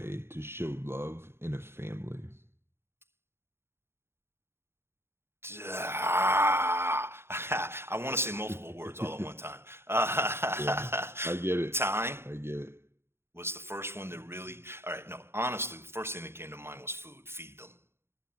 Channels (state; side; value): late; left; 0.12 ms